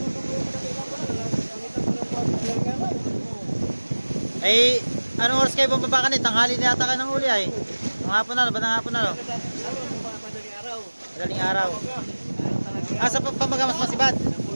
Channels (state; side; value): inverted; both; correlation -1.00